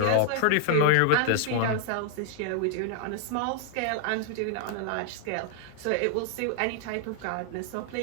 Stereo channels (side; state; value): both; different; correlation 0.00